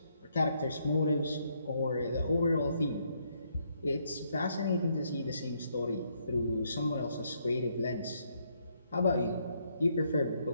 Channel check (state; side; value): inverted; both; correlation -0.73